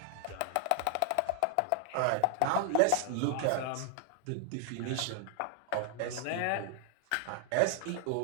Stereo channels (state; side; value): different; both; correlation 0.00